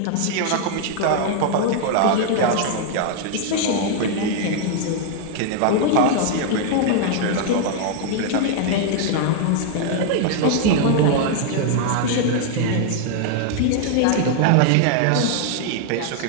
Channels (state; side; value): different; both; correlation 0.00